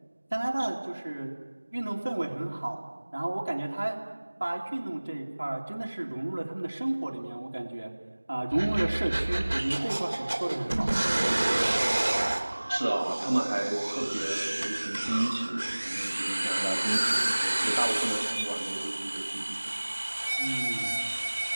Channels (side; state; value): both; inverted; correlation -1.00